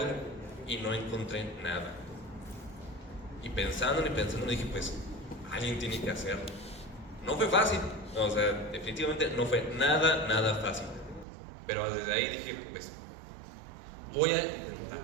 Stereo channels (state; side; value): drops out; left; at 11.2 s